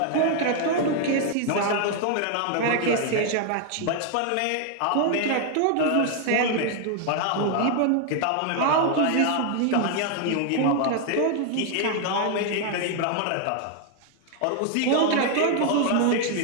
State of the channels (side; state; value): both; different; correlation 0.00